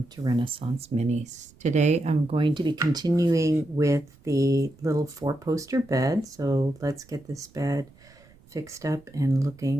to Renaissance Minis. Today I'm going to be continuing with the little 4-poster bed. So let's get this bed fixed up and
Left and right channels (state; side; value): noise; right; rumble, 27 dB below the sound